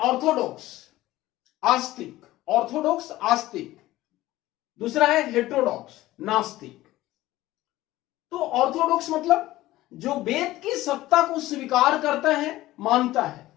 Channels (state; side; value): quieter; right; 16.6 dB